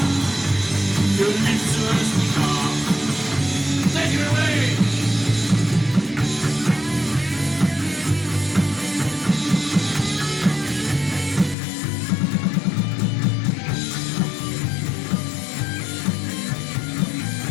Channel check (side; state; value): right; drops out; at 11.6 s